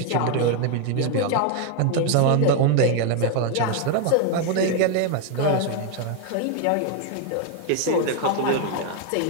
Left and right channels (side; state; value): both; different; correlation 0.01